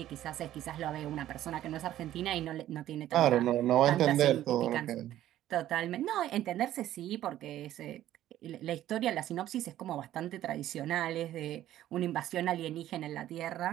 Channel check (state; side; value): quieter; left; 13.0 dB